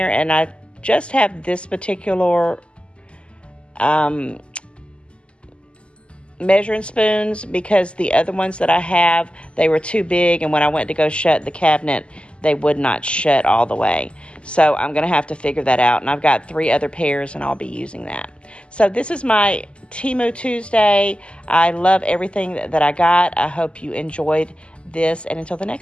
and I just have this particular measuring spoons because the other ones that I have, they were too big, and when I went to go shut the cabinet, they would not shut all the way. So I'm going to have to figure that out, and I've got 3 other pairs, and I'll be using that. So this is my Temu Tuesday. I love everything that I got. I hope you enjoyed this, and until the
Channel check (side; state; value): right; late; 0.054 ms